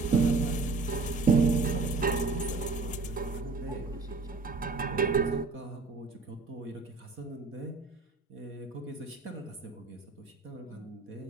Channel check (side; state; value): left; quieter; 3.8 dB